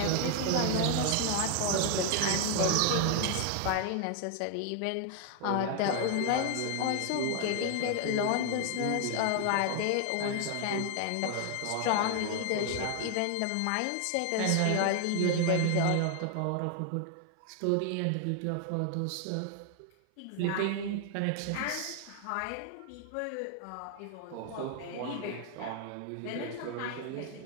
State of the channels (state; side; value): different; both; correlation 0.00